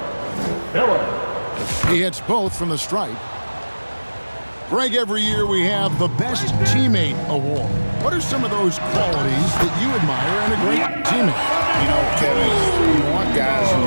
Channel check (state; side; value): inverted; both; correlation -1.00